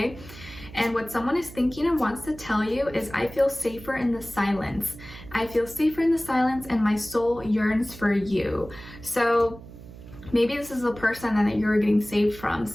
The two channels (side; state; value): right; noise; hum, 17 dB below the sound